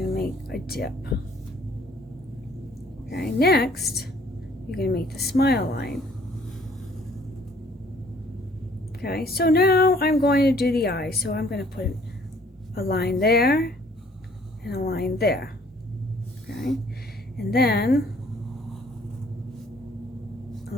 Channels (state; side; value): normal; both; correlation 0.59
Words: going to make a dip. Okay, next you're going to make the smile line. Okay, so now I'm going to do the eyes. So I'm going to put a line there and a line there. Okay, and then a